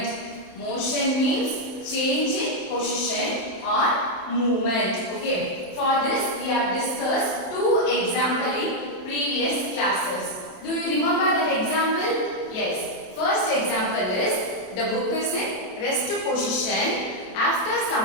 Motion means change in position or movement. Okay. For this, we have discussed two examples in previous classes. Do you remember that example? Yes. First example is the book is in rest position. After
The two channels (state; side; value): late; right; 27 ms